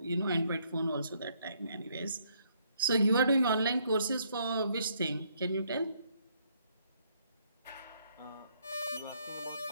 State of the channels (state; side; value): inverted; both; correlation -0.70